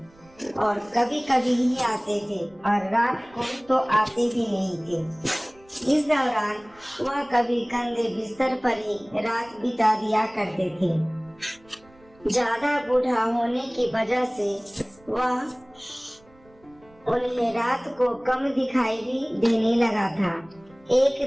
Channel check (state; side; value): noise; right; rumble, 29 dB below the sound